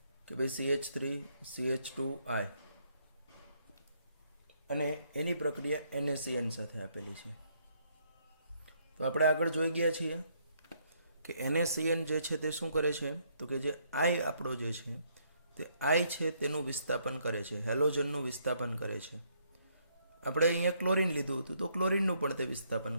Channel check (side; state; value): both; inverted; correlation -0.71